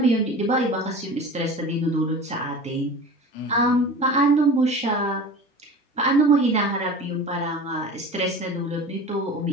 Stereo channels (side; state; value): both; normal; correlation 0.36